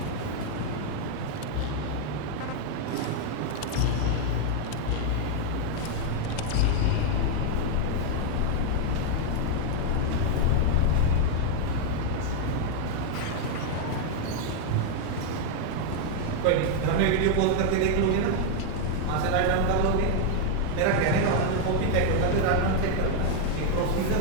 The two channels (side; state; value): both; different; correlation 0.00